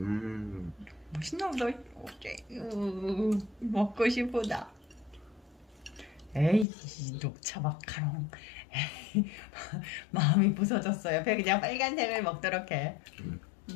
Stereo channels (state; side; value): drops out; right; at 6.7 s